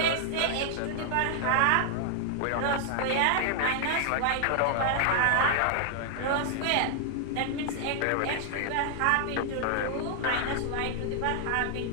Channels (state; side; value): different; both; correlation 0.00